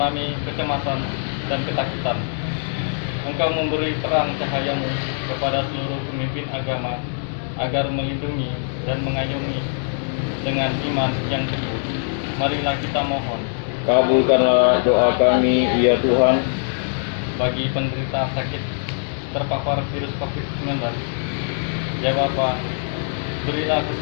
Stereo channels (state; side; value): silent; right; 63 dB below the other